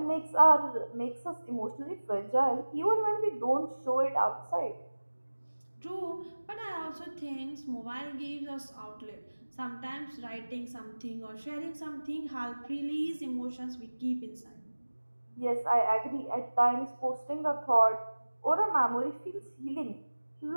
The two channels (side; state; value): both; inverted; correlation -1.00